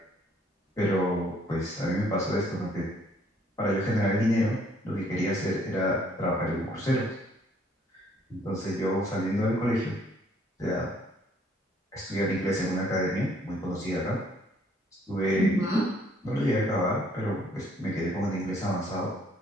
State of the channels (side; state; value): both; normal; correlation 0.63